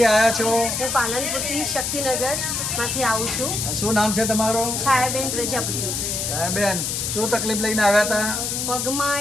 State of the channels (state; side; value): noise; left; hiss, 2 dB below the sound